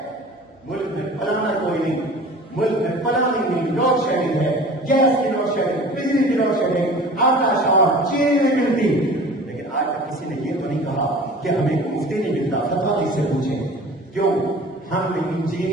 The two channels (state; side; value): normal; both; correlation 0.42